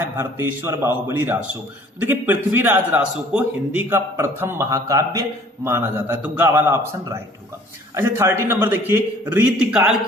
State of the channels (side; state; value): both; normal; correlation 0.53